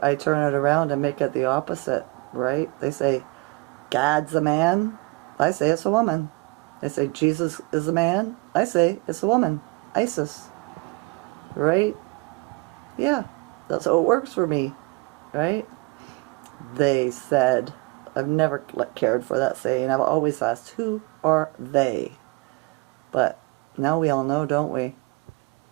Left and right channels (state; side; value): quieter; left; 26.9 dB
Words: turn it around and make it the opposite, right? They say, God's a man. I say it's a woman. They say Jesus is a man. I say it's a woman. Isis. Right? Yeah. That's how it works for me. Right? They said. I've never cared for that saying. I've always asked, who are they? But now we all know, don't we?